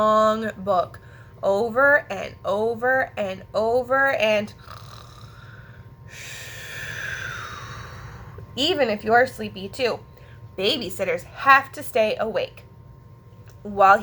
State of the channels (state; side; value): identical; both; correlation 1.00